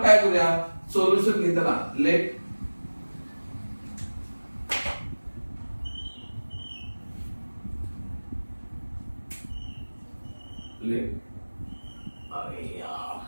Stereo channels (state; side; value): inverted; both; correlation -1.00